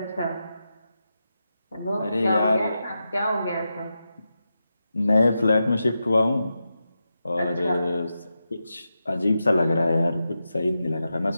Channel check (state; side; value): inverted; both; correlation -0.89